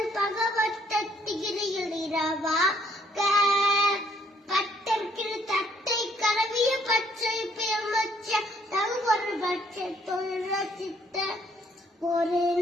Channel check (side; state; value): both; normal; correlation 0.67